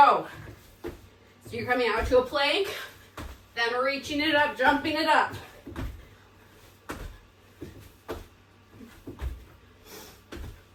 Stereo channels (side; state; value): both; identical; correlation 1.00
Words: So you're coming out to a plank, then we're reaching it up, jumping it up.